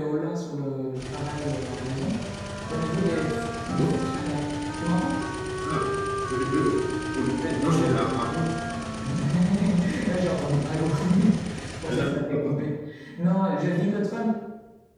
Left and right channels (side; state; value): both; identical; correlation 1.00